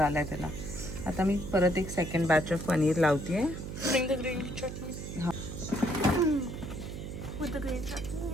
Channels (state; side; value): noise; right; hum, 8 dB below the sound